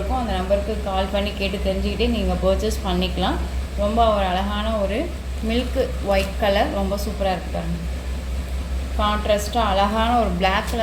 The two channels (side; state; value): both; identical; correlation 1.00